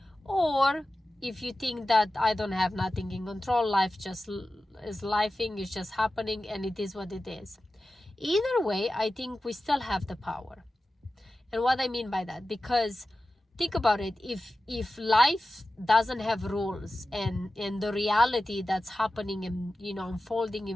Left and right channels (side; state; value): both; normal; correlation 0.94